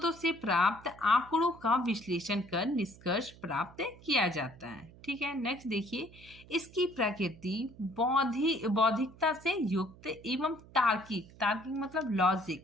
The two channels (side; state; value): right; noise; hum, 22 dB below the sound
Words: से प्राप्त आंकड़ों का विश्लेषण कर निष्कर्ष प्राप्त किया जाता है। ठीक है, नेक्स्ट देखिए इसकी प्रकृति बौद्धिकता से युक्त एवं तार्किक मतलब लॉजिक,